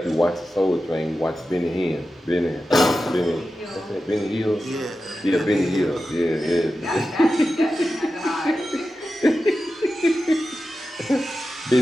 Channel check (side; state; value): both; normal; correlation 0.92